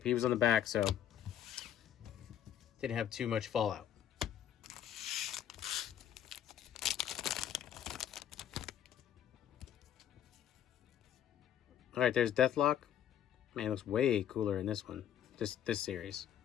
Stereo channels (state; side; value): quieter; right; 10.2 dB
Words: He was on the back, so didn't have too much fallout. All right, there's Deathlock. Man, it looks way cooler in this one. This series.